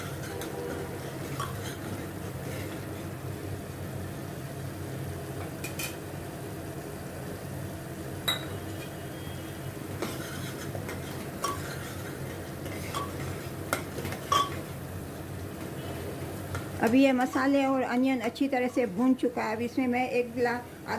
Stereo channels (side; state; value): both; identical; correlation 1.00